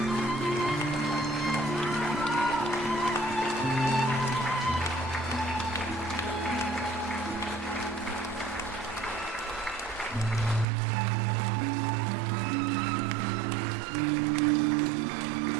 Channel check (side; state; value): left; drops out; at 10.7 s